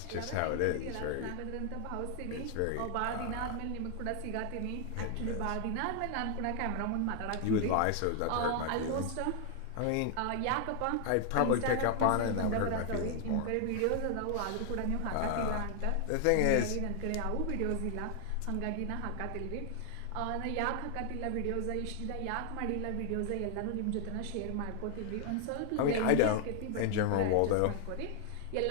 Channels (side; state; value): both; different; correlation 0.00